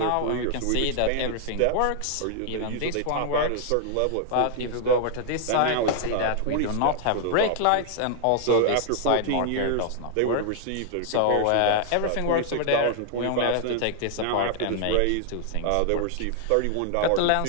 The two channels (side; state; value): both; different; correlation 0.00